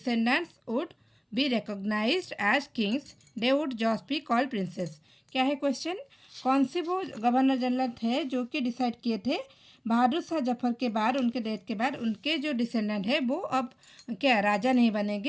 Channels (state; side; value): identical; both; correlation 1.00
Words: would be recognized as kings, they would just be called princes। क्या है question? कौन से वो governor general थे जो कि decide किए थे बहादुर शाह जफर के बाद, उनके डेथ के बाद उनके जो डिसेंडेंट है वो अब क्या राजा नहीं